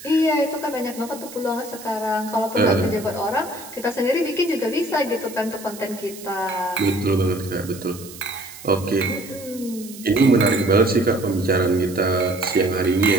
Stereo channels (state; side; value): noise; right; hiss, 16 dB below the sound